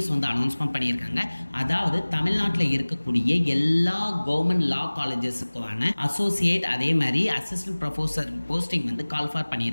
வந்து announcement பண்ணியிருக்காங்க. அதாவது தமிழ்நாட்டில் இருக்கக்கூடிய எல்லா கவர்மெண்ட் லா காலேஜஸுக்கான அசோசியேட் அதே மாதிரி அசிஸ்டன்ட் ப்ரொஃபஸர் போஸ்டிங் வந்து கால் ஃபார்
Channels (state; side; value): inverted; both; correlation -1.00